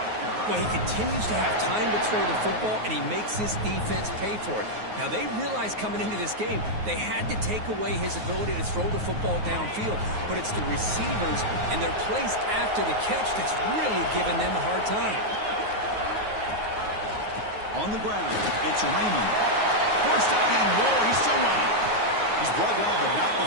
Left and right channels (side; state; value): left; late; 9.4 ms